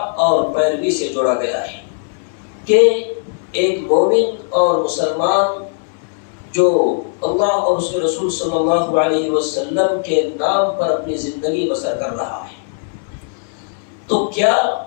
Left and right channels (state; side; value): silent; right; 67 dB below the other